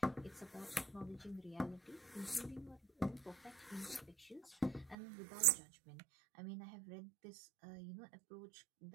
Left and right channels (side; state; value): left; drops out; at 5.0 s